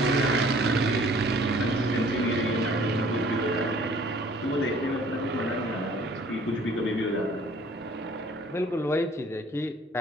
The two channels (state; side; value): normal; both; correlation 0.55